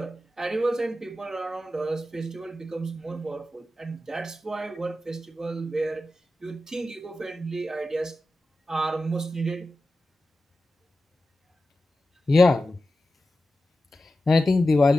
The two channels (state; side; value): normal; both; correlation 0.93